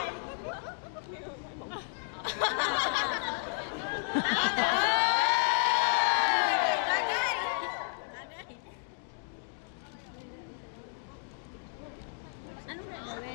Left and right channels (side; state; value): right; silent; 56 dB below the other